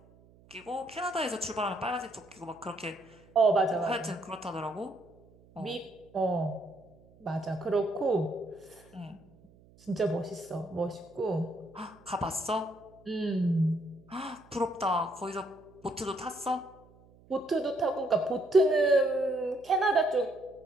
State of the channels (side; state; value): right; noise; hum, 27 dB below the sound